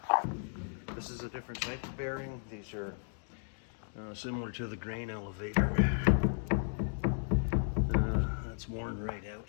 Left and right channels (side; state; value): right; silent; digital silence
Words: this is a different type of bearing. These are similar to the grain elevator. That's worn right